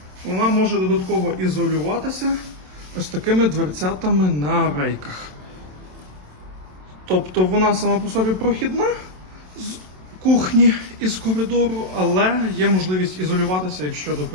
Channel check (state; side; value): late; left; 27 ms